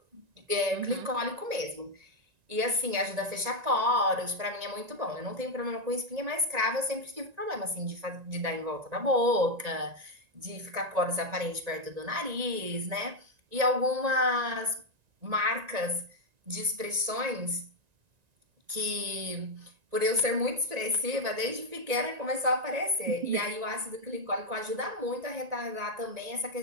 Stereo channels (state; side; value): late; left; 1.9 ms